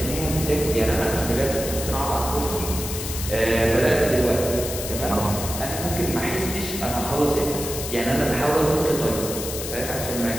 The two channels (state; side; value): noise; left; hiss, 7 dB below the sound